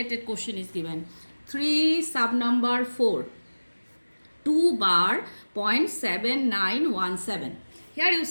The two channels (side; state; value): both; inverted; correlation -1.00